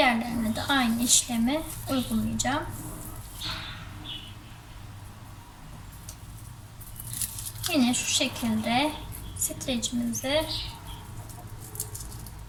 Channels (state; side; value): identical; both; correlation 1.00